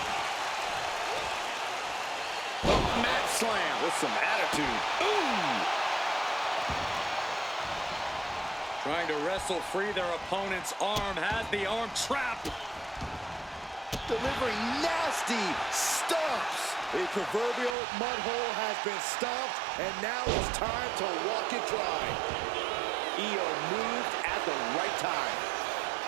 Slam with some attitude. Ooh! Trying to wrestle free their opponent's arm, has the arm trapped. Delivering nasty stomps. A proverbial mud hole has been stomped, and now it's time to walk it dry. Io moved at the right time.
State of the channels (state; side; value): drops out; left; at 17.8 s